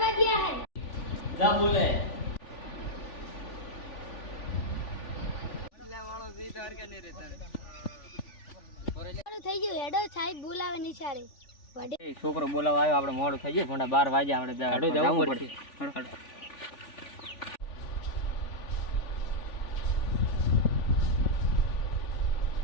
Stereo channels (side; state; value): right; late; 3.4 ms